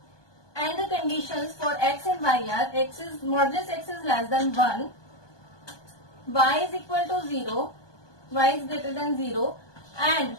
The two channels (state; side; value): late; right; 1.2 ms